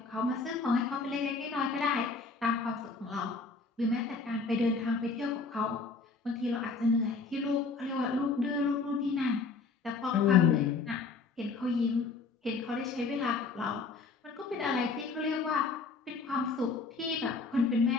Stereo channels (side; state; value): right; quieter; 4.3 dB